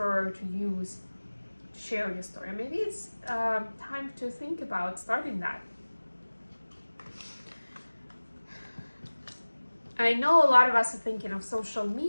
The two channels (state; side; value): inverted; both; correlation -1.00